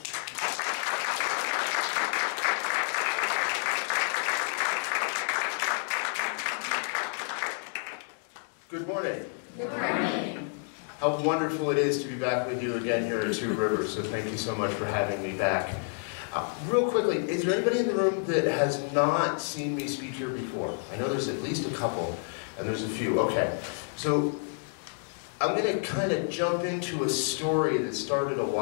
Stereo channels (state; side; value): silent; right; 57 dB below the other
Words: Good morning. Good morning. How wonderful it is to be back with you again here at Two Rivers, so thank you so much for having me back. Real quickly, is there anybody in the room that has not seen me speak here before? I know there's at least a couple, and there's a few. Okay, so I'm going to kind of jump into a story that started a